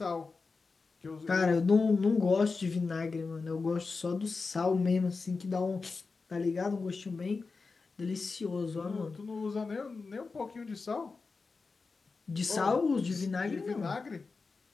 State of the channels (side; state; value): right; quieter; 4.3 dB